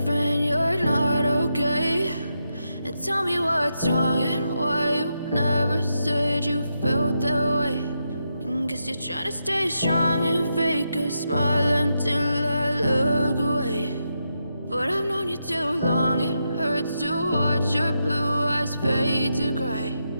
you're not okay, and tell me what's wrong and why you never said you felt that way. And guess you're trying to stay strong and fake a smile until I look away. But I've known you too long, it hurts to watch your blue eyes fade to gray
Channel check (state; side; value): inverted; both; correlation -0.85